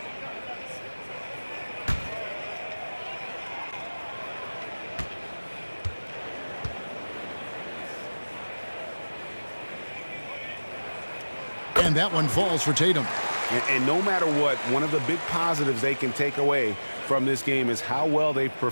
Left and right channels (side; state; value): both; inverted; correlation -1.00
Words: And that one falls for Tatum. And no matter what, one of the big positives they can take away from this game is how well they